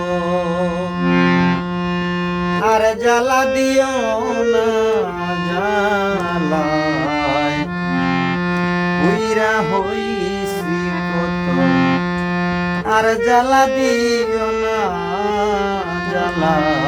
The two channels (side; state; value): both; identical; correlation 1.00